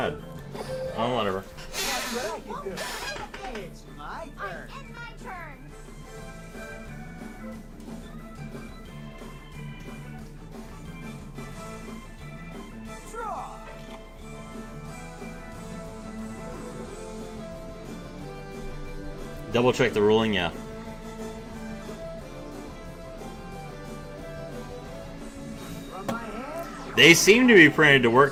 Oh, whatever. That's what I can do. It's my turn. I end my turn. Draw. Double check the ruling, yeah. From my hand. They seem to be printed to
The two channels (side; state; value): both; identical; correlation 1.00